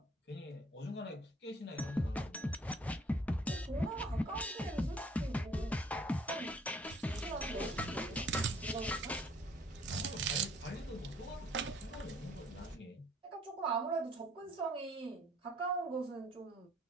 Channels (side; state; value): both; normal; correlation 0.59